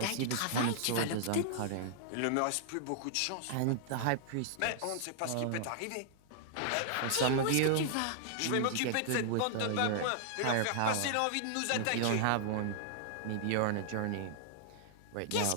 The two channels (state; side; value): different; both; correlation -0.01